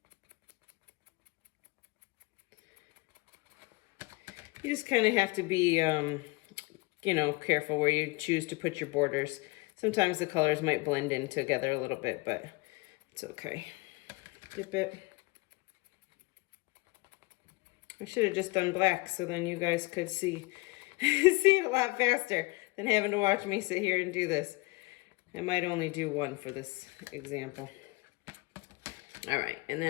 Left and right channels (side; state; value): right; quieter; 24.5 dB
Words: You just kind of have to be, careful where you choose to put your borders. Sometimes the colors might blend in together a little bit, but it's okay. Dip it. I should have just done black so then you guys could see it a lot faster than having to watch me sit here and do this. I might only do one for this example. All right, and